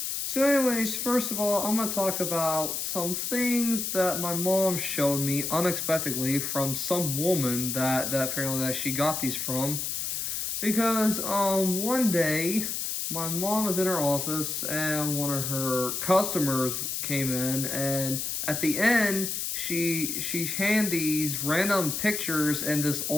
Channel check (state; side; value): noise; left; hiss, 2 dB below the sound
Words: So anyways, first of all, I'm going to talk about some things that my mom showed me unexpectedly from some woman that apparently that she got these from. Because one day my mom was in her office and one of her customers came in, and at the end she handed these random pictures in this